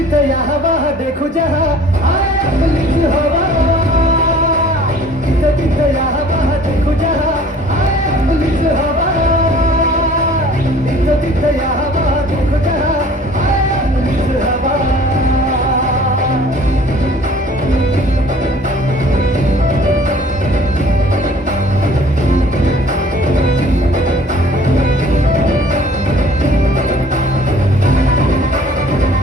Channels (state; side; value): normal; both; correlation 0.51